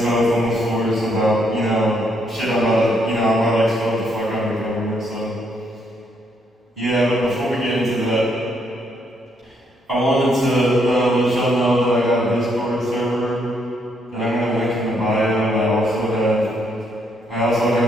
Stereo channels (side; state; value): both; normal; correlation 0.73